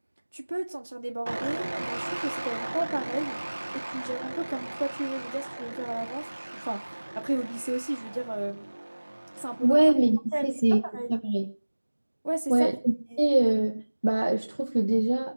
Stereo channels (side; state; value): both; inverted; correlation -1.00